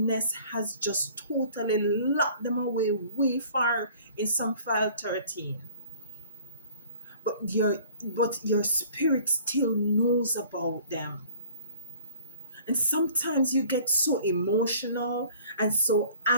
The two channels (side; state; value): both; inverted; correlation -0.51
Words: has just totally locked them away way far in some file 13. But your spirit still knows about them. And sometimes you get so emotional and so